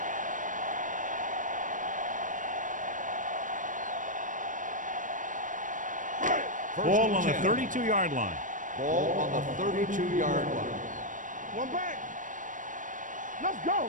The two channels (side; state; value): left; late; 0.38 ms